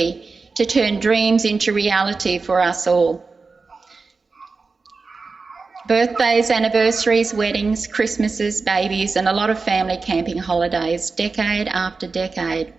to turn dreams into reality for us all. Birthdays, anniversaries, weddings, Christmases, babies, and a lot of family camping holidays, decade after decade.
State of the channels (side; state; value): left; quieter; 4.3 dB